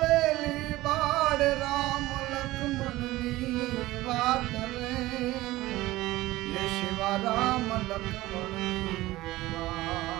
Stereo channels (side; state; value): left; quieter; 17.7 dB